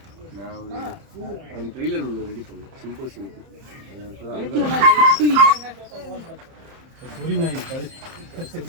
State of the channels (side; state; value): left; late; 30 ms